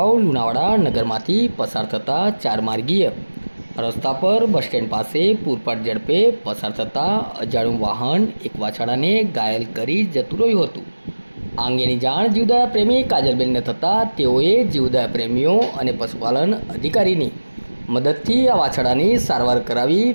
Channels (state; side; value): inverted; both; correlation -1.00